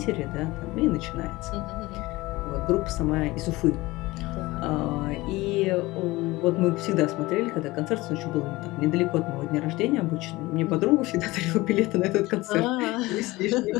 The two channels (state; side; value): quieter; right; 20.2 dB